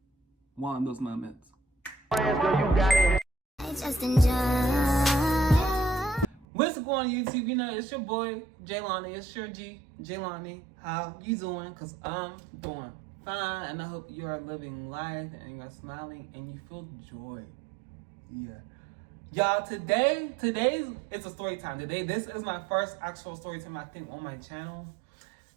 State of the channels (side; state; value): left; drops out; at 6.5 s